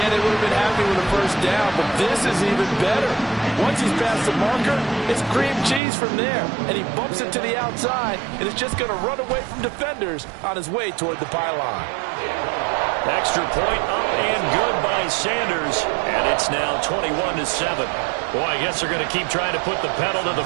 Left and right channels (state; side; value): drops out; left; at 5.8 s